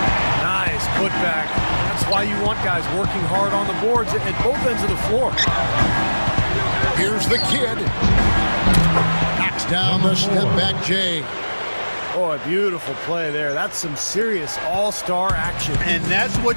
putback. That's why you want guys working hard on the boards at both ends of the floor. Here's the kid. Knocks down the step-back J. Oh, a beautiful play there. That's some serious all-star action. And that's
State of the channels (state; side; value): inverted; both; correlation -1.00